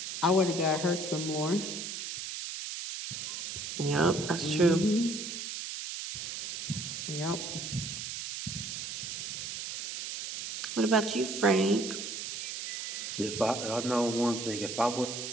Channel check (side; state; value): right; noise; hiss, 6 dB below the sound